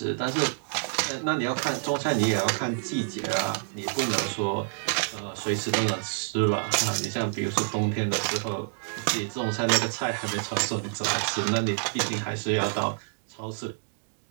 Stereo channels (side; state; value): left; silent; digital silence